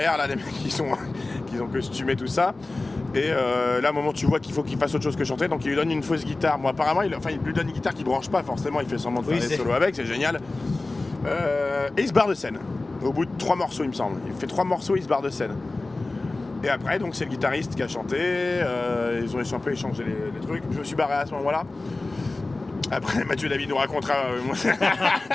là, les mecs qui ont costumé tout ça. Et là, à un moment, tu vois qu'il faut qu'il fasse autre chose que chanter, donc il lui donne une fausse guitare. Moi, apparemment, il lui donne une guitare qui branche pas, forcément, il fait semblant de faire des solos avec, c'est génial. Et il se barre de scène. Au bout de 3 morceaux, il me semble. Il fait 3 morceaux, il se barre de scène. Et après, donc, c'est le guitariste qui a chanté. Ils ont un peu échangé les trucs. Je me suis barré à ce moment-là. Après, Mathieu David nous racontera.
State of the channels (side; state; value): right; quieter; 3.2 dB